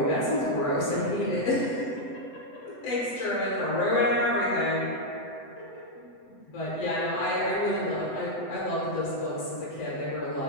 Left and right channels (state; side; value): late; right; 7.9 ms